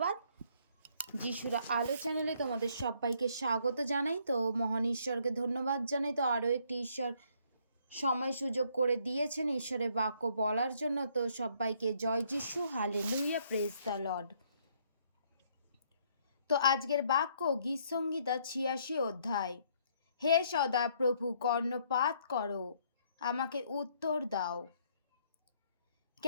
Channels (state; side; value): inverted; both; correlation -0.67